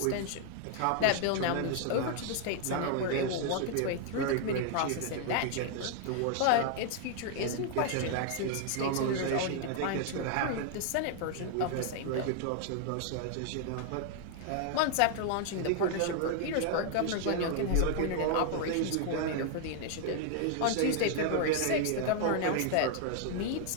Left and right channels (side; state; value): both; different; correlation 0.00